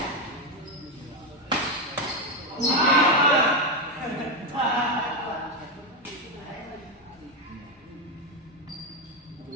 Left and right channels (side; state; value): both; normal; correlation 0.07